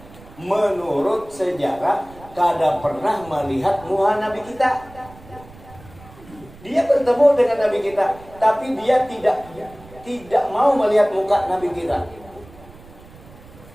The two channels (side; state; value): right; noise; rumble, 21 dB below the sound